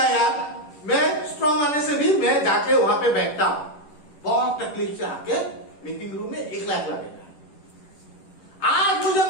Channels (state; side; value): late; right; 10 ms